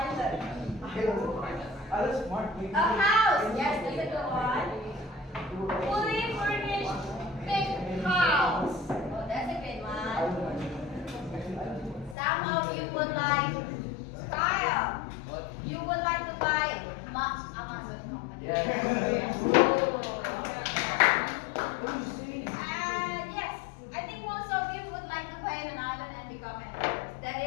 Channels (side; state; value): right; drops out; at 12.2 s